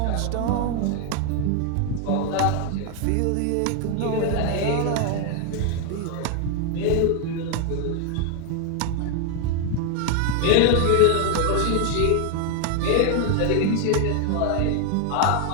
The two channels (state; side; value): different; both; correlation 0.00